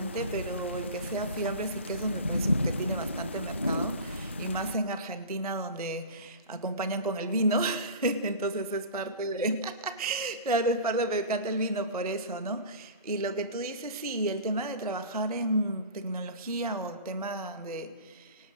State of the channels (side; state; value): both; inverted; correlation -0.35